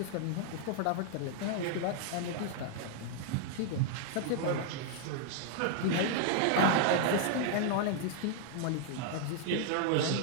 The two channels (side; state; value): both; different; correlation -0.01